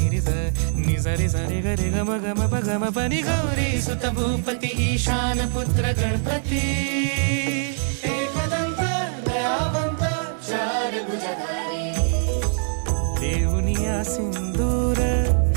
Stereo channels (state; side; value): silent; left; 59 dB below the other